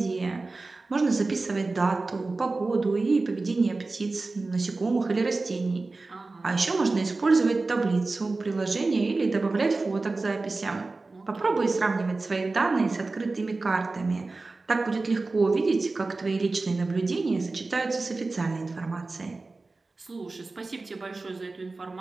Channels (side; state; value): left; quieter; 3.5 dB